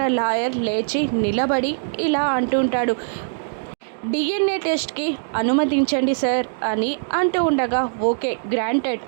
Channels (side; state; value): left; silent; digital silence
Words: లాయర్ లేచి నిలబడి ఇలా అంటుంటాడు, డిఎన్ఏ టెస్ట్కి అనుమతించండి సార్ అని అంటూ ఉండగా ఓకే గ్రాంటెడ్